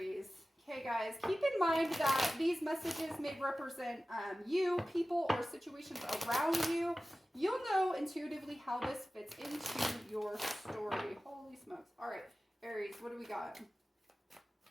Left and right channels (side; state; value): both; normal; correlation 0.96